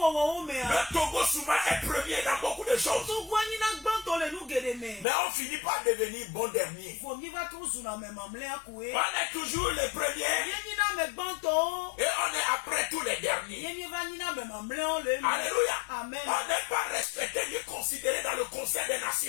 Togo souvent est premier dans beaucoup de choses. Mais on finit par devenir bon dernier. On est toujours les premiers et on est après tous les derniers. Alléluia. Amen. On n'est pas respecté ni considéré dans le Conseil des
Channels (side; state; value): right; drops out; at 5.1 s